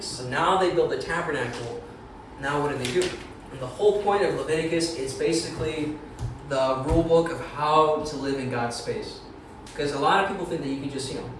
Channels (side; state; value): both; identical; correlation 1.00